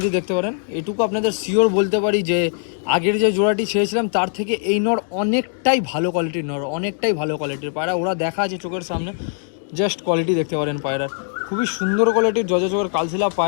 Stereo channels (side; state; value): right; silent; digital silence